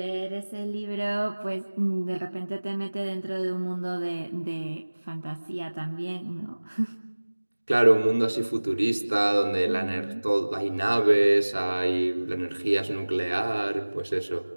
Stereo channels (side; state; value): both; inverted; correlation -1.00